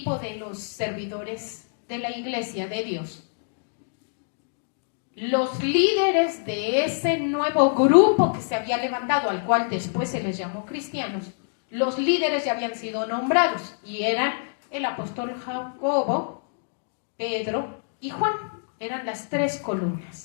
de los servidores de la iglesia de Dios, los líderes de ese nuevo grupo que se había levantado, al cual después se les llamó cristianos, los líderes ya habían sido nombrados y eran el apóstol Jacobo, Pedro y Juan. Eran las 3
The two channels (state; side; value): silent; right; digital silence